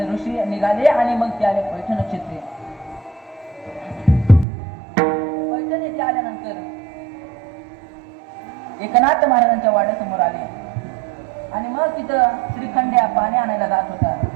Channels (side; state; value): left; drops out; at 4.5 s